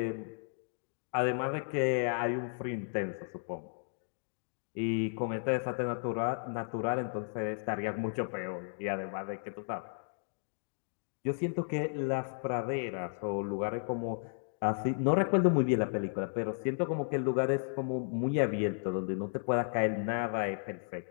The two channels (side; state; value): right; silent; digital silence